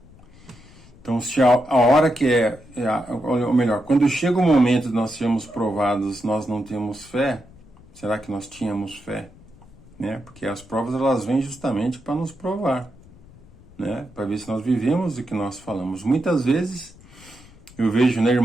Então, se a hora que ou melhor, quando chega o momento de nós sermos provados, nós não temos fé, será que nós tínhamos fé? Né? Porque as provas, elas vêm justamente para nos provar, né? Para ver se nós vivemos o que nós falamos. Muitas vezes eu vejo, né,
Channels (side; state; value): left; noise; rumble, 23 dB below the sound